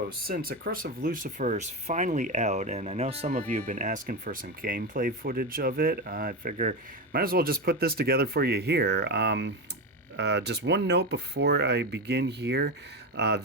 since A Curse of Lucifer is finally out, and I know some of you have been asking for some gameplay footage of it, I figure might as well just put this together for you here. Just one note before I begin here.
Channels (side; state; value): both; normal; correlation 0.16